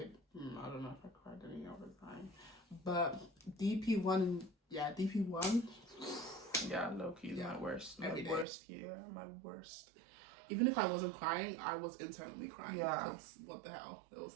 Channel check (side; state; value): left; drops out; at 8.5 s